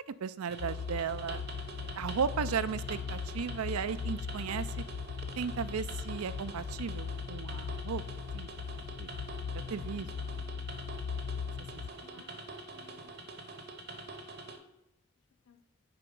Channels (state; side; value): normal; both; correlation 0.14